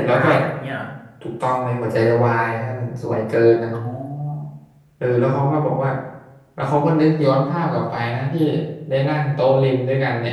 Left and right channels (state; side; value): identical; both; correlation 1.00